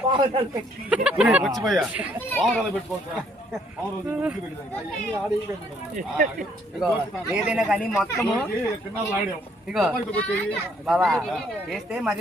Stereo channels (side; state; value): both; normal; correlation 0.66